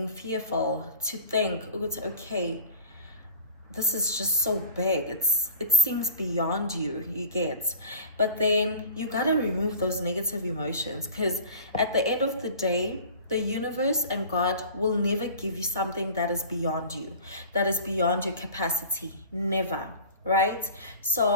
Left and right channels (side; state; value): both; inverted; correlation -0.40